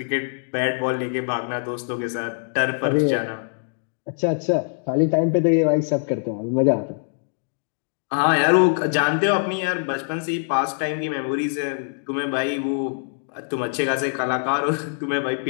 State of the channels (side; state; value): right; silent; digital silence